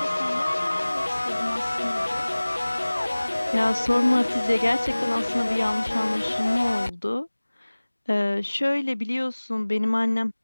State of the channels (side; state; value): both; inverted; correlation -1.00